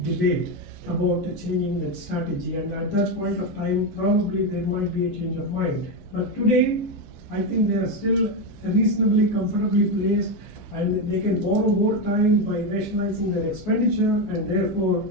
about changing that strategy, and at that point of time, probably there might be a change of mind. But today, I think they are still reasonably comfortably placed, and they can borrow more time by rationalizing their expenditure and therefore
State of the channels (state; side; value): late; left; 11 ms